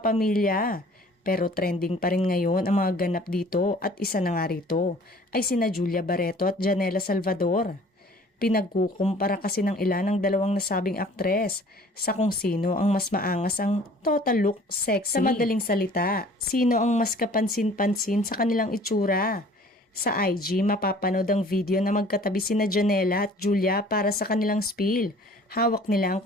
Pero trending pa rin ngayon ang mga ganap dito at isa na nga rito ay sina Julia Barreto at Janela Salvador. Pinagkukumpara kasi ng ilan ng dalawang nasabing aktres sa kung sino ang mas maangas ang total look sexy. Sa madaling salita, sino ang mas kapansin-pansin sa kanilang itsura. Sa IG, mapapanood ang video na magkatabi sina Janela at Julia para sa kanilang spiel. Hawak nila ang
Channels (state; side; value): normal; both; correlation 0.51